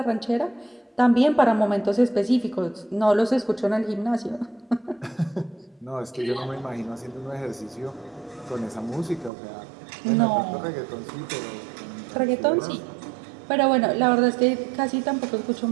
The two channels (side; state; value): left; drops out; at 9.3 s